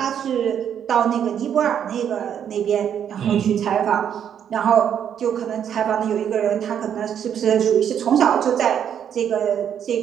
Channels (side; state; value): left; quieter; 8.9 dB